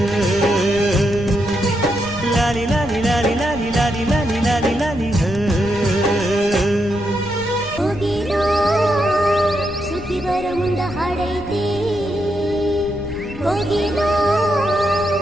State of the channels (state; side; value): noise; left; rumble, 13 dB below the sound